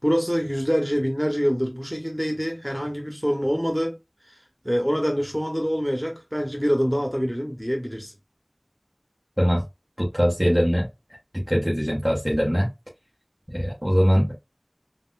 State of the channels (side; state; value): both; identical; correlation 1.00